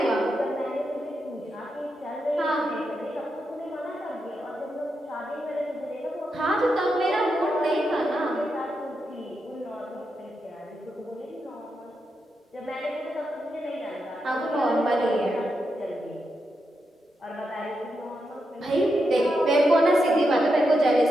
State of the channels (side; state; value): both; normal; correlation 0.85